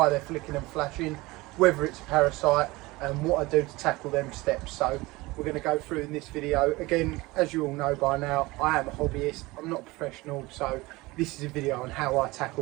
they're flicking and flashing, whether it's a parasite, and what I do to tackle them steps. So we're going to go through in this video. Again, as you all know by now, I am a hobbyist, I'm not a professional, so this is a video on how I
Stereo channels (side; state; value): left; quieter; 21.4 dB